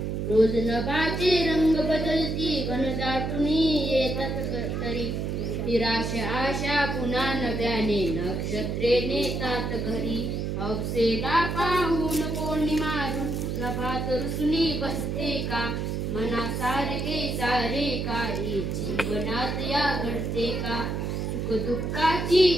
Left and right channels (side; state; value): right; noise; hum, 2 dB below the sound